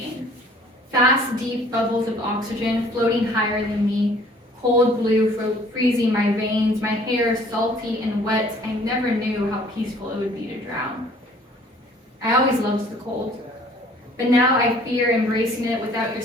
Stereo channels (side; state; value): both; normal; correlation 0.55